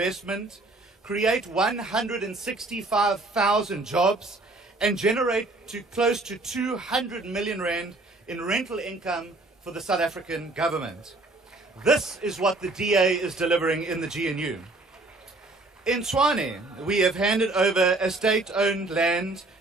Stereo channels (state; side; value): quieter; left; 3.0 dB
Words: create 165,000 jobs, and generate close to 200 million rand in rental income for the South African government. This is what the DA is delivering in the GNU. In Tshwane, we have handed over a state-owned land